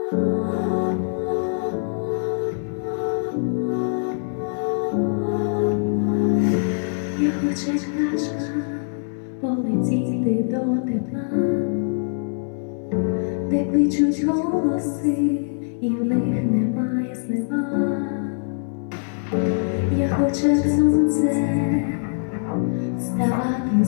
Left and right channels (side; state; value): right; silent; 63 dB below the other